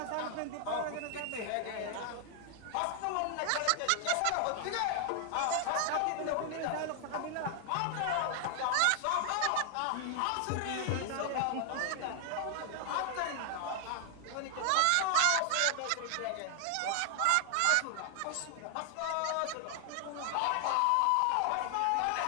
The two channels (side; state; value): both; different; correlation 0.00